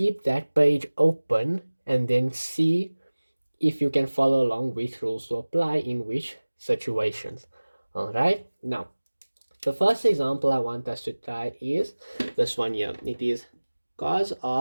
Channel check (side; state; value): both; inverted; correlation -1.00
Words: that page open and then see if you can follow along which rules to apply in which situations. All right, now the first example I want us to try is this one here. It is cos